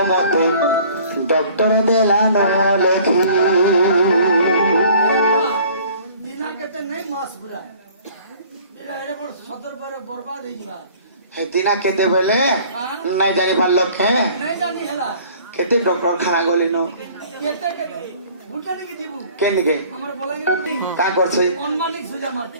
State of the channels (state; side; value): inverted; both; correlation -0.52